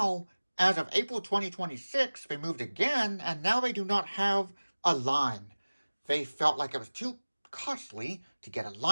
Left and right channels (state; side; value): inverted; both; correlation -1.00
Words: as of April 2026, they moved again, and now they do not have a line. They felt like it was too costly to get a